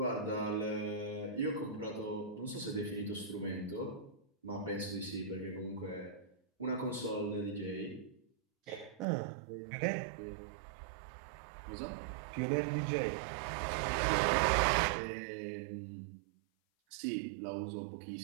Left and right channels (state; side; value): drops out; left; at 9.1 s